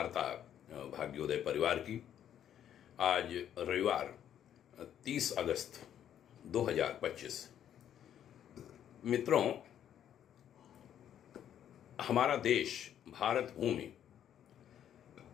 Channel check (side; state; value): right; quieter; 10.1 dB